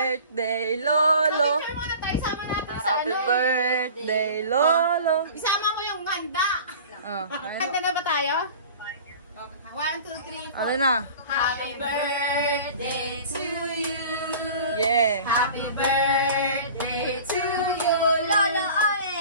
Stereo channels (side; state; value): both; inverted; correlation -0.41